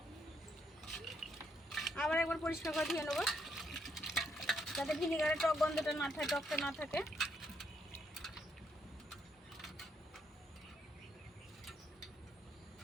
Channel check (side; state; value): both; normal; correlation 0.75